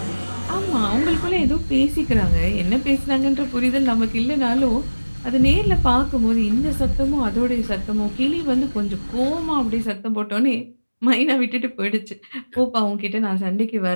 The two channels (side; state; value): both; inverted; correlation -1.00